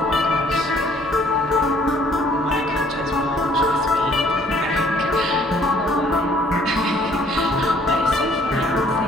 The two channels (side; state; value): both; normal; correlation 0.60